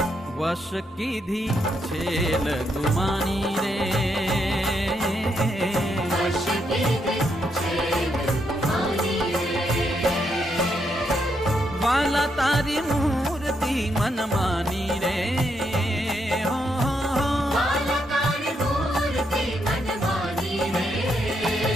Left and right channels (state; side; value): normal; both; correlation 0.78